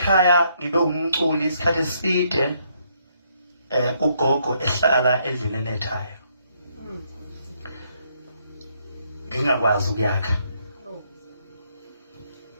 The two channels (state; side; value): inverted; both; correlation -0.72